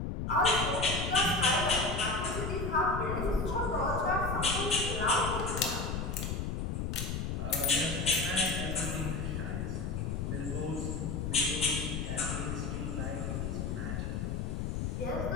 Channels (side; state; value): left; noise; rumble, 2 dB below the sound